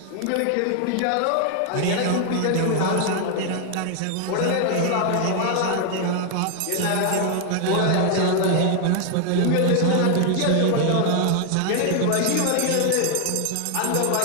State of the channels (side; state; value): both; different; correlation 0.00